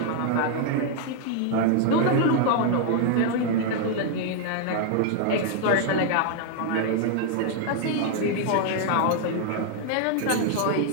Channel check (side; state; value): both; different; correlation 0.00